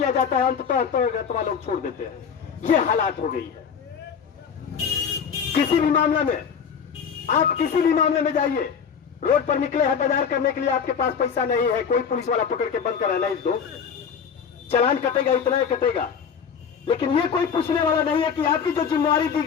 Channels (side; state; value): right; quieter; 6.9 dB